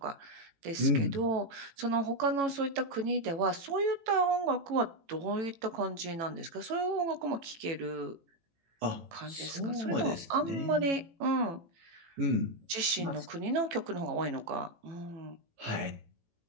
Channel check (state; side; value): late; left; 18 ms